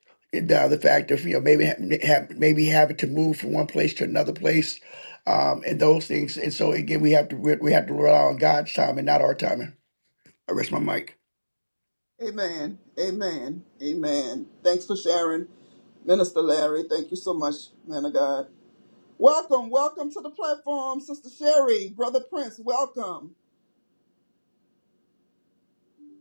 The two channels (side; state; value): both; inverted; correlation -1.00